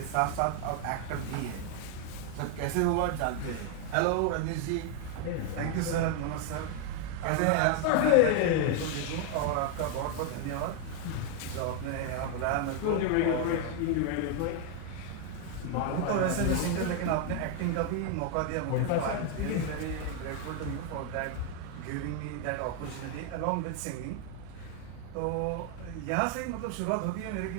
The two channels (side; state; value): both; different; correlation 0.01